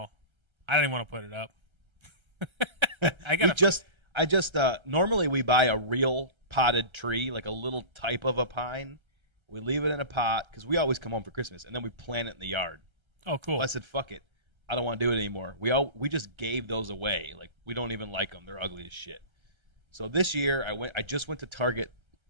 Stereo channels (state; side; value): late; left; 1.3 ms